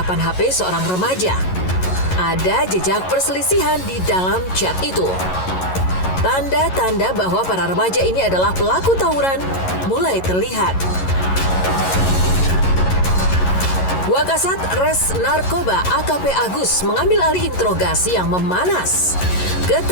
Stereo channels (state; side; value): late; right; 11 ms